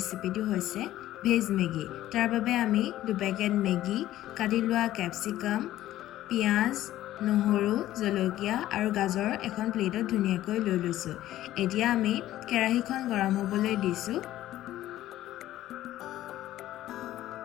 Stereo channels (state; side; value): quieter; right; 14.1 dB